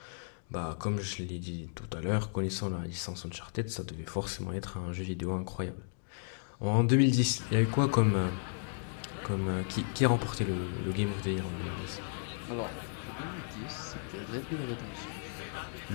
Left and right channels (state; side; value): silent; right; digital silence